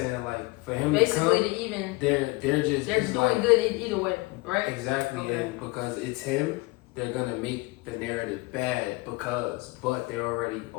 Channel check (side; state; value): right; quieter; 23.8 dB